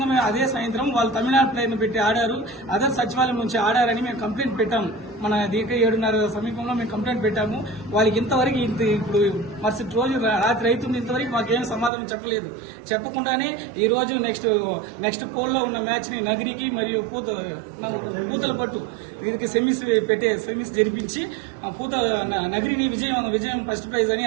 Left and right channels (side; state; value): left; drops out; at 11.9 s